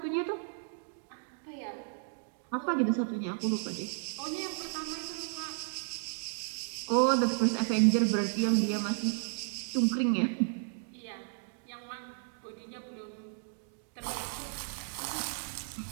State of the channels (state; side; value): silent; left; digital silence